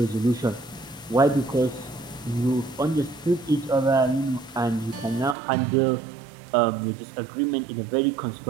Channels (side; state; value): left; drops out; at 5.4 s